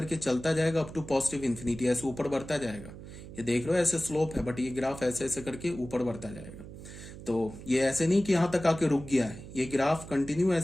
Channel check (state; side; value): noise; right; hum, 14 dB below the sound